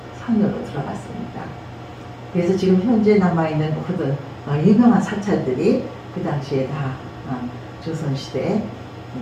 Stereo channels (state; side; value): identical; both; correlation 1.00